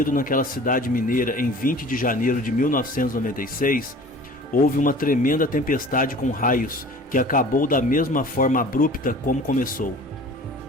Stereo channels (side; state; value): both; normal; correlation 0.44